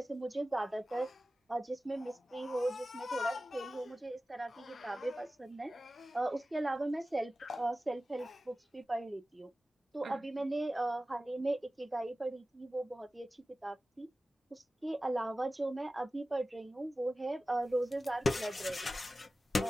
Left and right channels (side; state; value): both; normal; correlation 0.96